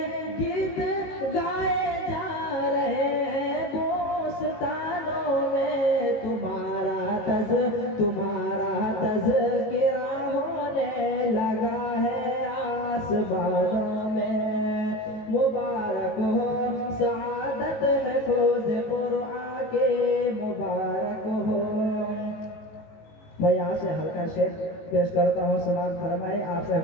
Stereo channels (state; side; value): late; right; 18 ms